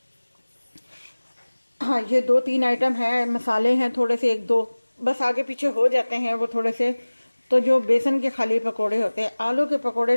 हाँ ये 2-3 आइटम है, मसाले हैं थोड़े से, एक दो बस आगे पीछे हो जाते हैं वो थोड़े से। तो जो बेसन के खाली पकोड़े होते हैं, आलू के पकोड़े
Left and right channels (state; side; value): inverted; both; correlation -1.00